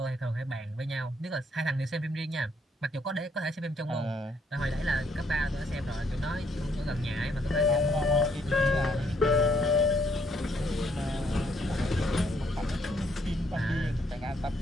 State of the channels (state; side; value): normal; both; correlation 0.70